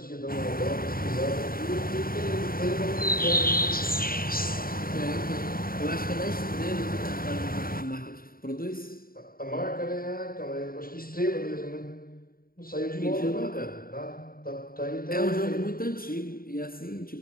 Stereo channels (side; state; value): right; late; 0.42 ms